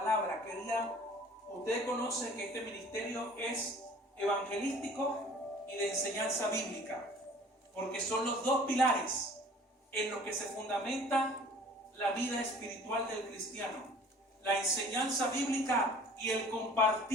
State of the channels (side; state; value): both; normal; correlation 0.49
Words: Ustedes conocen que este ministerio es evangelístico y de enseñanza bíblica, porque son los dos pilares en los que se fundamenta la vida espiritual del cristiano: la enseñanza bíblica y el